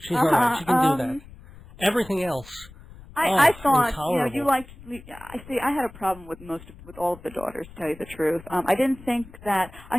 She's all right. She can do that. Everything else. I thought, intolerable. you liked. I had a problem with with all of the daughters, to tell you the truth. I didn't think that. I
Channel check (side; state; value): left; noise; rumble, 19 dB below the sound